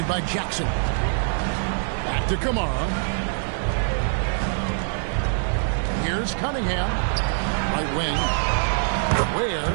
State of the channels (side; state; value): left; silent; 63 dB below the other